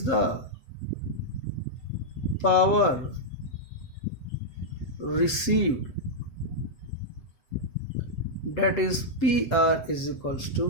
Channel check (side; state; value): right; late; 7.4 ms